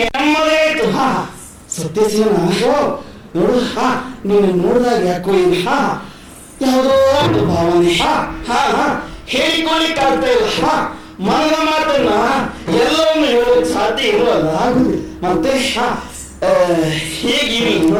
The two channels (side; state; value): both; identical; correlation 1.00